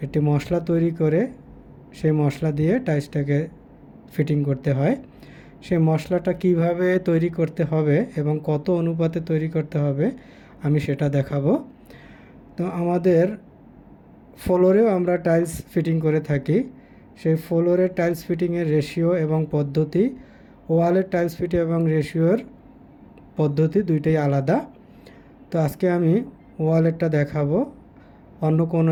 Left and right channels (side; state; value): both; identical; correlation 1.00